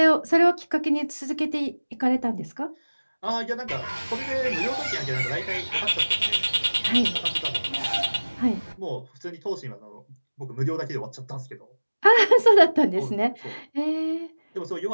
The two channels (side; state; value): both; inverted; correlation -1.00